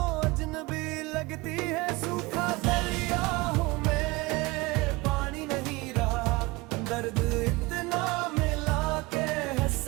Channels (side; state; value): left; quieter; 22.6 dB